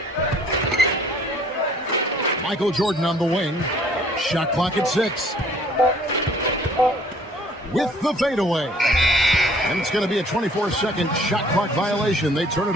Michael Jordan on the wing. Shot clock at 6. With the fadeaway. And it's going to be a 24-second shot clock violation. They turn it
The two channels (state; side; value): normal; both; correlation 0.57